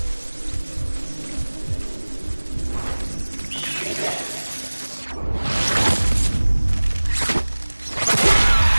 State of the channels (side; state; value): both; inverted; correlation -1.00